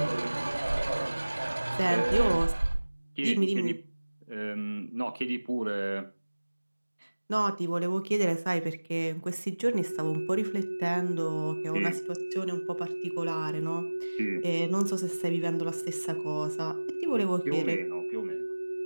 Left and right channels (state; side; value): inverted; both; correlation -1.00